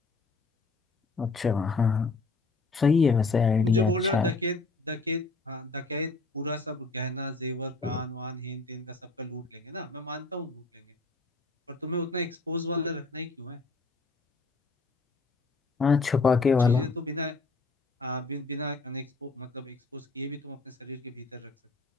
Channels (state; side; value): quieter; right; 3.8 dB